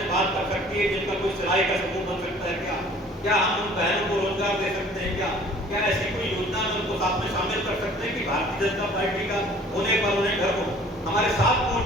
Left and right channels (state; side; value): normal; both; correlation 0.52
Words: बात कर सकती है जिनका कोई सिलाई का समूह बन सकता है? क्या हम उन बहनों को रोजगार दे सकते हैं? क्या ऐसी कोई योजना में उनको साथ में शामिल कर सकते हैं कि भारतीय जनता पार्टी का होने पर उन्हें घर हो? हमारे 7